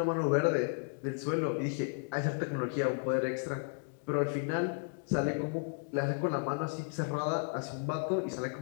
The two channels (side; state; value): right; silent; 55 dB below the other